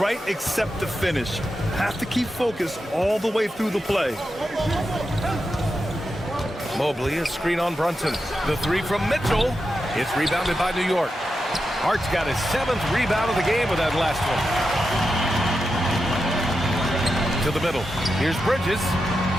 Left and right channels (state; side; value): normal; both; correlation 0.89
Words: except the finish. Have to keep focused all the way through the play. Mobley, a screen on Brunson. The 3 from Mitchell. It's rebounded by New York. Hart's got his 7th rebound of the game with that last one. To the middle. Here's Bridges.